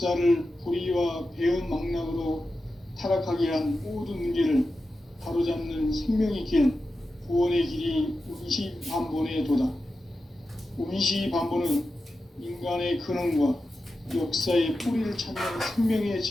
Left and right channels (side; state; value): both; normal; correlation 0.91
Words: 불의와 배음 망락으로 타락하게 한 모든 문제를 바로잡는 생명의 길, 구원의 길이 운시반본의 도다. 운시반본은 인간의 근원과 역사의 뿌리를 찾는 생명의